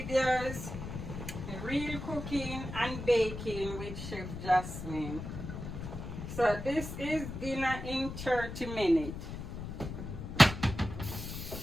Real Cooking and Baking with Chef Jasmine. So this is dinner in 30 minutes.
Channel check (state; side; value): noise; left; rumble, 7 dB below the sound